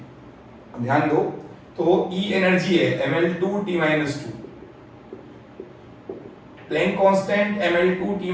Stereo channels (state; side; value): identical; both; correlation 1.00